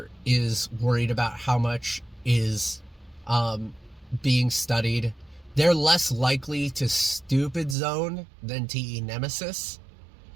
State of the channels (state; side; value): drops out; left; at 7.8 s